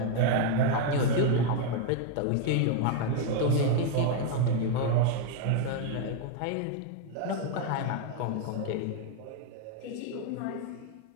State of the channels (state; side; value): different; both; correlation 0.00